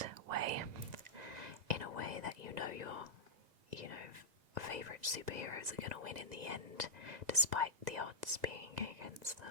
way, in a way that your favourite superheroes are going to win in the end, despite the odds being against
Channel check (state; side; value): late; left; 1.9 ms